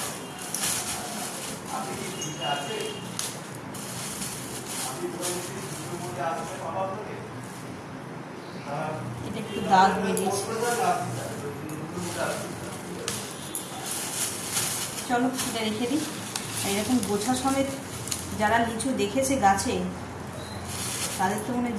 এটা একটু দাগ বেরিয়েছে। চলো এটা রেখে দিই। এরকম গোছা সমেত যারা লিচু দেখেছে গাছে তাদের তো মনে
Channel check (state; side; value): identical; both; correlation 1.00